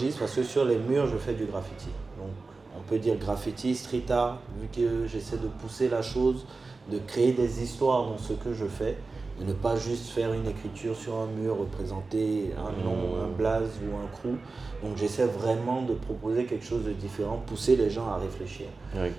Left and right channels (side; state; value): left; quieter; 3.9 dB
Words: parce que sur les murs, je fais du graffiti. Donc, on peut dire graffiti, street art, vu que j'essaie de pousser la chose, de créer des histoires dans ce que je fais. De ne pas juste faire une écriture sur un mur, représenter un nom, un blaze ou un crew. Donc j'essaie vraiment de proposer quelque chose de différent, pousser les gens à réfléchir.